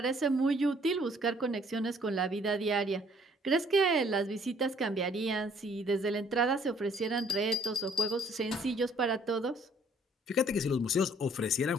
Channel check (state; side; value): normal; both; correlation 0.61